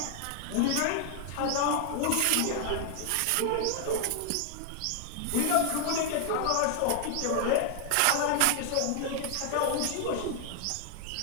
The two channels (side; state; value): both; different; correlation 0.00